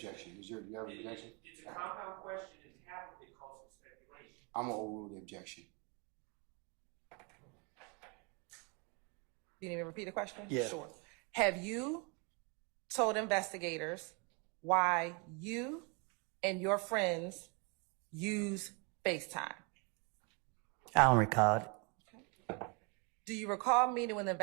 You have an objection? It's a compound question, and half of it calls for speculation. I'm gonna overrule the objection. You need me to repeat the question? Yeah. Sure. Have you told investigators why you and your friends use FaceTime? I don't recall it. Do you recall meeting with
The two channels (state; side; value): quieter; left; 32.6 dB